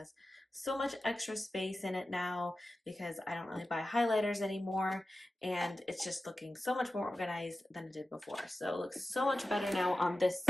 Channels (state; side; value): normal; both; correlation 0.94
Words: so much extra space in it now because I don't really buy highlighters anymore, and it's just looking so much more organized than it did before. So it looks so much better now on this